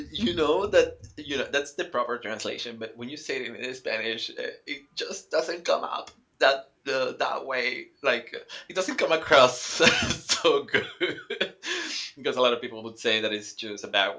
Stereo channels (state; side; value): identical; both; correlation 1.00